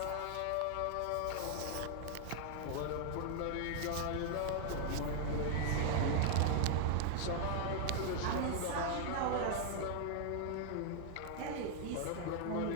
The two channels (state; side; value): different; both; correlation 0.00